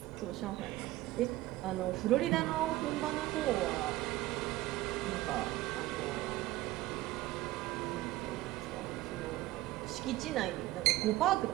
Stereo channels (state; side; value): quieter; left; 16.9 dB